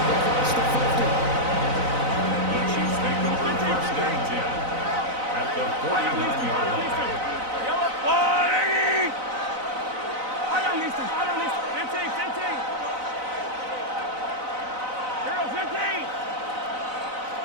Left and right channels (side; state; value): left; late; 4.0 ms